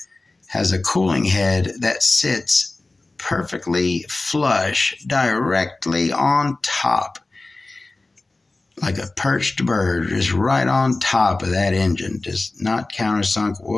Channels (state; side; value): quieter; right; 3.2 dB